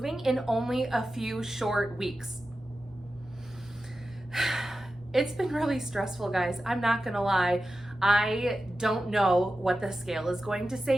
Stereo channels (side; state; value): both; normal; correlation 0.92